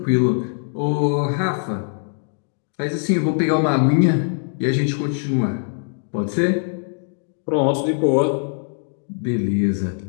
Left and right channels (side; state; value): right; silent; digital silence